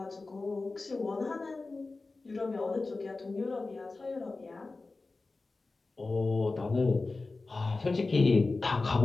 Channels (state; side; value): quieter; right; 3.6 dB